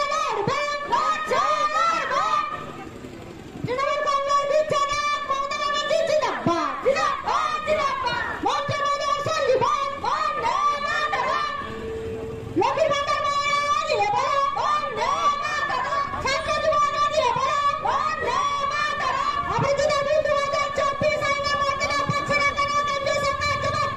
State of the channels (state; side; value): identical; both; correlation 1.00